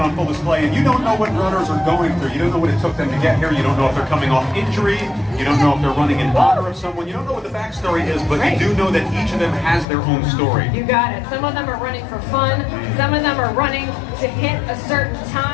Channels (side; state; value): right; drops out; at 9.9 s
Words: on full display, and you don't know what runners are going through. You don't know what it took them to get here. You don't know if they're coming off injury. You don't know if they're running in honor of someone. You don't know what the backstory is, but you do know that each of them has their own story. You got it. Some of them are running for fun. Some of them are running to hit a certain